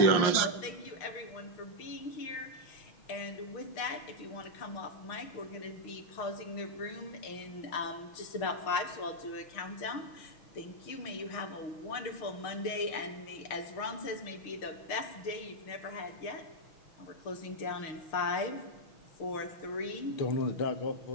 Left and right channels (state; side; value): late; right; 6.5 ms